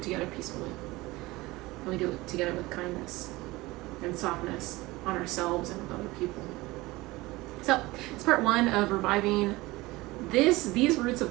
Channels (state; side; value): quieter; left; 20.5 dB